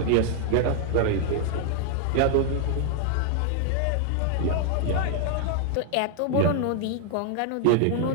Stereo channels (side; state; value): both; different; correlation 0.00